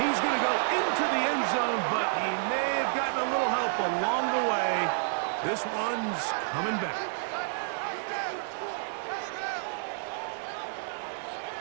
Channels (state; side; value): silent; left; digital silence